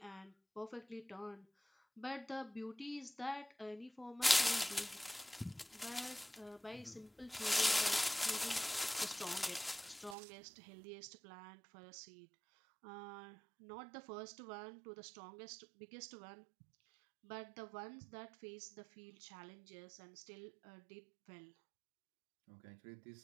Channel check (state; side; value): drops out; left; at 10.2 s